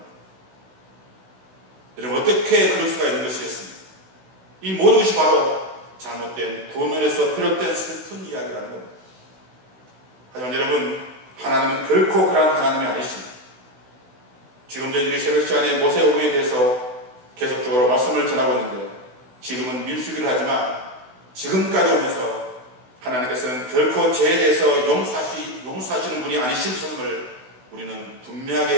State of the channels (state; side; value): late; left; 16 ms